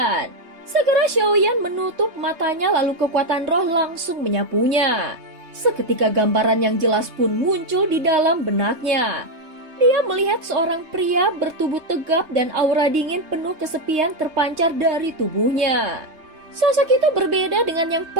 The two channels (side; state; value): left; late; 3.2 ms